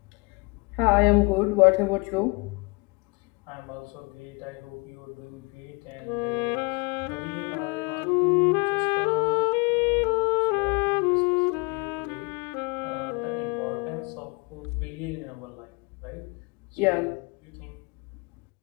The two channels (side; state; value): right; quieter; 29.9 dB